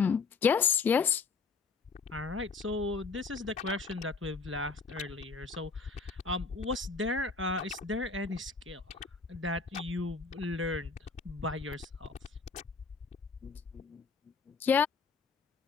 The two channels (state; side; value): quieter; right; 4.7 dB